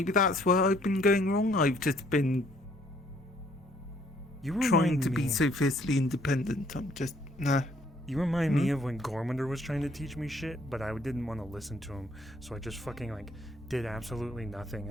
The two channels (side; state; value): both; normal; correlation 0.64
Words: where I've been going wrong. I've just been trying to be so fiercely independent. I'm just nah. You remind me of when Gormander was trying to teach me shit, but I didn't want to listen to him, so I just fucking like did absolutely nothing